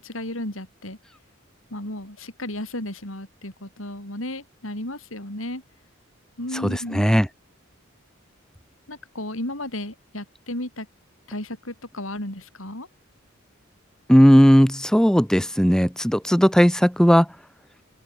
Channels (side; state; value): both; normal; correlation 0.96